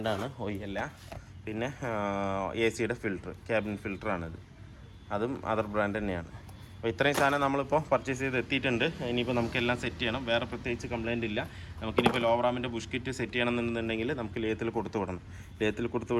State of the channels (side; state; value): both; identical; correlation 1.00